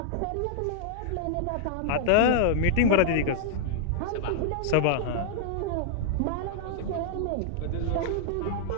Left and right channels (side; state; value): both; different; correlation -0.01